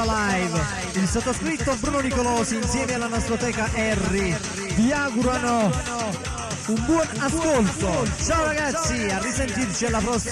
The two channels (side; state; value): both; identical; correlation 1.00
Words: il sottoscritto Bruno Nicolosi insieme alla nastroteca Harry vi augurano un buon ascolto. Ciao ragazzi, a risentirci alla